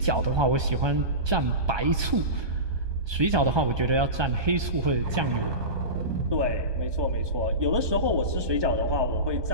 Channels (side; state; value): left; late; 1.3 ms